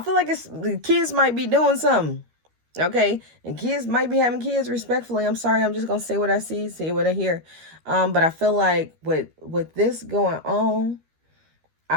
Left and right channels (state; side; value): late; left; 13 ms